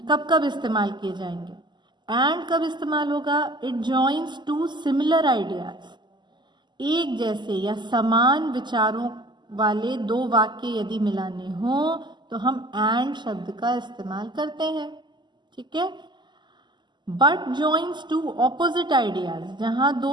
कब कब इस्तेमाल किए जाएंगे। एंड कब इस्तेमाल होगा? It joins two similar ideas, एक जैसे या समान विचारों वाले दो वाक्य यदि मिलाने हो तो हम एंड शब्द का इस्तेमाल करते हैं। ठीक है। But joins two opposite ideas, जहां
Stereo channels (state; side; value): late; left; 0.21 ms